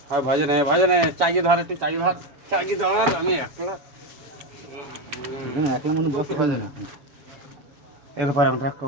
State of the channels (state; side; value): late; left; 7.0 ms